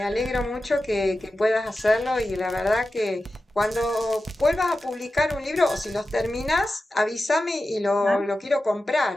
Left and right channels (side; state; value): both; normal; correlation 0.93